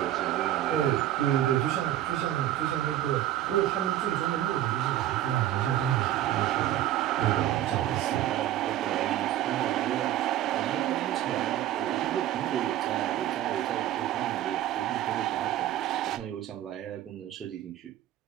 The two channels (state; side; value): quieter; left; 12.8 dB